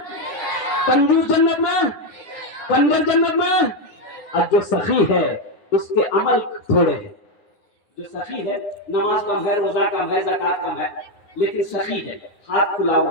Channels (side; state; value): right; late; 9.7 ms